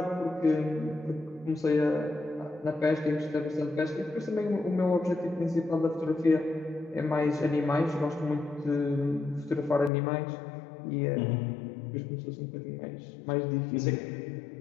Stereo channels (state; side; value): drops out; right; at 9.9 s